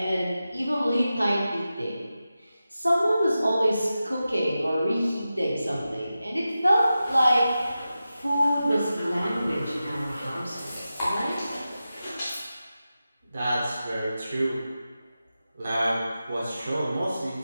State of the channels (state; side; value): inverted; both; correlation -0.93